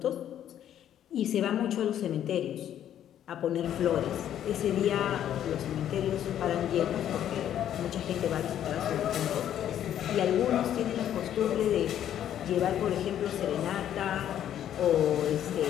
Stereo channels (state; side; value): quieter; right; 10.6 dB